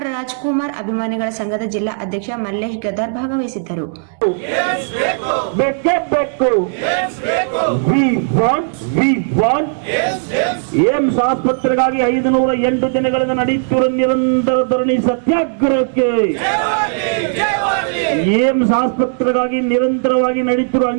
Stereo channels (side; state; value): left; silent; digital silence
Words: ರಾಜ್ಕುಮಾರ್ ಅಭಿಮಾನಿಗಳ ಸಂಘದ ಜಿಲ್ಲಾ ಅಧ್ಯಕ್ಷ ಮಲ್ಲೇಶ್ ಗದಾರ್ ಭಾಗವಹಿಸಿದ್ದರು. ಏಮ್ಸ್ ಆಸ್ಪತ್ರೆಗಾಗಿ 508 ದಿನಗಳಿಂದ ನಡೆಯುತ್ತಿರುವ ನಿರಂತರ ಧರಣಿ ಸತ್ಯಾಗ್ರಹಕ್ಕೆ, ಏಮ್ಸ್ ಆಸ್ಪತ್ರೆಗಾಗಿ ನಿರಂತರವಾಗಿ ನಡೆಯುತ್ತಿರುವ